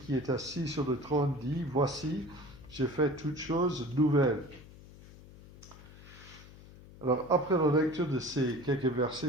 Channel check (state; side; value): noise; left; hum, 19 dB below the sound